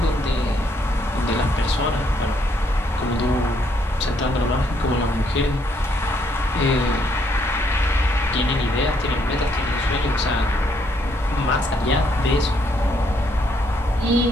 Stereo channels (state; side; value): normal; both; correlation 0.71